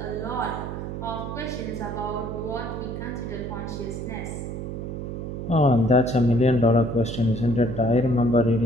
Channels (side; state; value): right; noise; hum, 6 dB below the sound